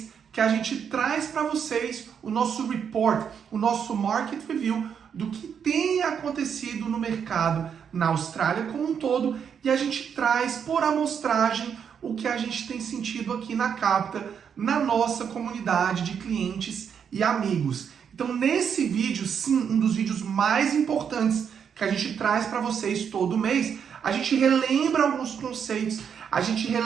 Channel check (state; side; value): quieter; left; 7.5 dB